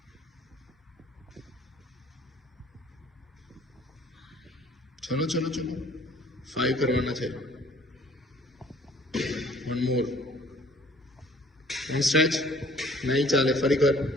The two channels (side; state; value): both; normal; correlation 0.56